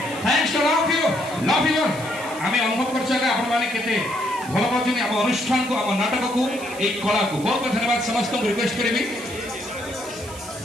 भल पाँच आम अनुष्ठान को आम नाटक को एक कला को बहुत बहुत धन्यवाद समस्त को रिक्वेस्ट करी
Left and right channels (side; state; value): right; noise; hiss, 16 dB below the sound